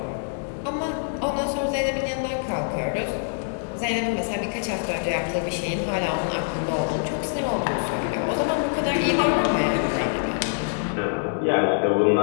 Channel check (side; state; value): right; silent; digital silence